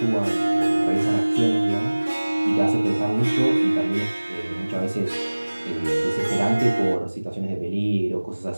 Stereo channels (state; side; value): inverted; both; correlation -1.00